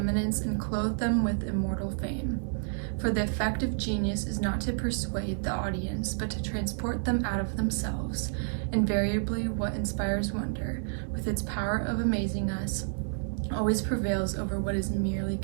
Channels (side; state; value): left; silent; 58 dB below the other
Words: and clothed them with immortal fame. For the effect of genius is not to persuade the audience, but to transport them out of themselves. Invariably what inspires wonder, with its power of amazing us, always prevails over what is merely